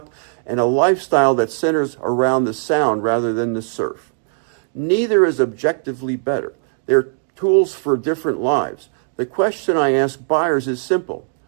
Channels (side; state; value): left; silent; digital silence